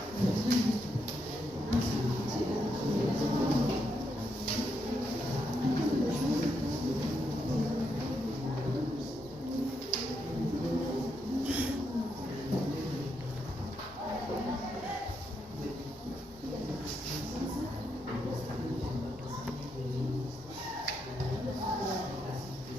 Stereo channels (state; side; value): normal; both; correlation 0.80